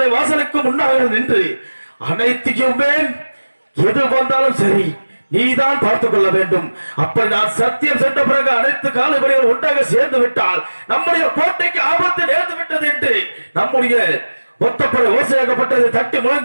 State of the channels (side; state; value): both; inverted; correlation -1.00